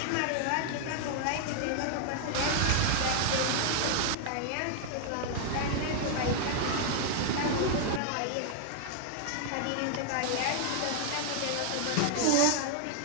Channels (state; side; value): different; both; correlation 0.00